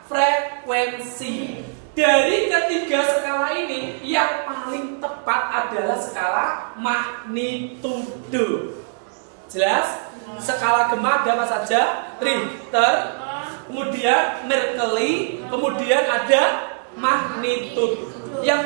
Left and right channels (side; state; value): left; silent; digital silence